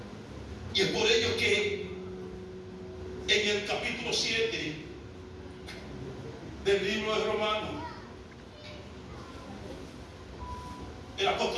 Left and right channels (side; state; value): both; identical; correlation 1.00